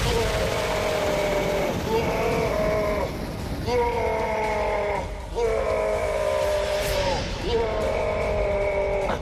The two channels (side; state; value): both; identical; correlation 1.00